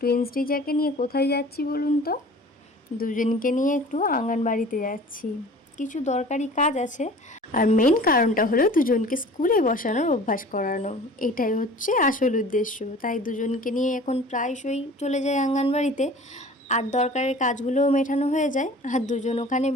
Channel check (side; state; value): both; normal; correlation 0.44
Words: টিচারকে নিয়ে কোথায় যাচ্ছি বলুন তো? দুজনকে নিয়ে একটু আঙ্গনবাড়িতে যাচ্ছি, কিছু দরকারি কাজ আছে। আর মেন কারণটা হলো দুজনকে স্কুলে বসানোর অভ্যাস করানো। এটাই হচ্ছে আসল উদ্দেশ্য। তাই দুজনকে নিয়ে এখন প্রায়শই চলে যায় আঙ্গনবাড়িতে। আর দরকারের কাজগুলোও মেটানো হয়ে যায়, আর দুজন ওখানে